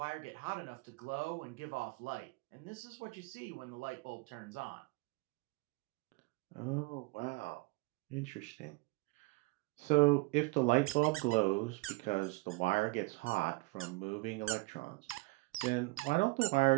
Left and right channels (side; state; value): left; quieter; 24.9 dB